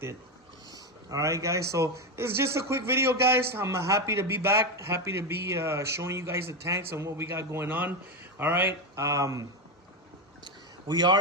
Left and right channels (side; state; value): both; normal; correlation 0.11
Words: All right, guys, so it's just a quick video, guys. I'm happy to be back, happy to be showing you guys the tanks and what we got going on. All right, we